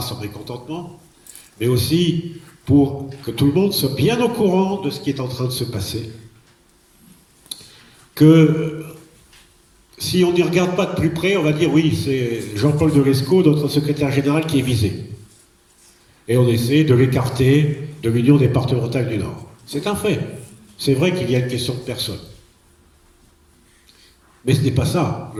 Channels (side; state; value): both; identical; correlation 1.00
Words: son mécontentement, mais aussi pour que tout le monde soit bien au courant de ce qui est en train de se passer. Que si on n'y regarde pas de plus près, on va dire oui, c'est Jean-Paul Delesco, notre secrétaire général, qui est visé. Et on essaie de l'écarter de l'Union départementale du Nord. C'est un fait. C'est vrai qu'il y a une question de personne. Mais ce n'est pas ça,